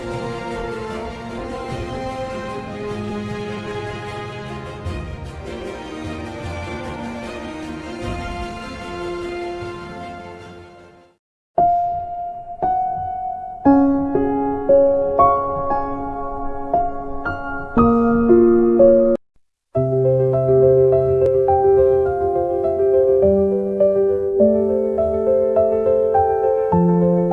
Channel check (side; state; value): both; identical; correlation 1.00